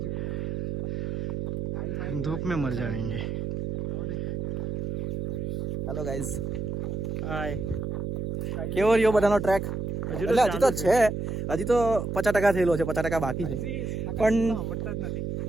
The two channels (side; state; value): right; noise; hum, 3 dB below the sound